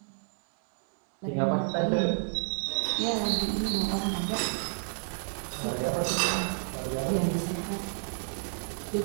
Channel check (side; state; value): left; silent; digital silence